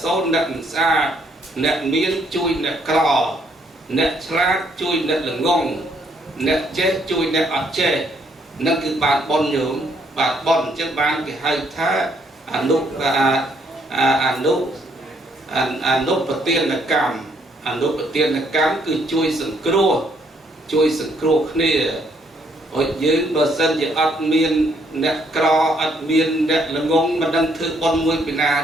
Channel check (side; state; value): both; normal; correlation 0.70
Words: សូនអ្នកមិនស្អាតអ្នកមានជួយអ្នកក្រអ្នកឆ្លាតជួយអ្នកល្ងងអ្នកចេះជួយអ្នកអត់ចេះនឹងគឺបានបន់ញោមបានបន់អញ្ចឹងបានគេហៅថាអនុប្រទានកម្មគឺជួយសង្គ្រោះគ្នាឲ្យយើងបើសិនជាអត់មានអ្នកក្រអត់មានអ្នកល្ងងមិនដឹងធ្វើបន់មួយពីណា